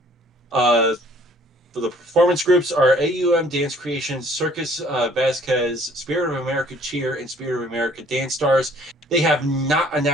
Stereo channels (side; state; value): both; normal; correlation 0.58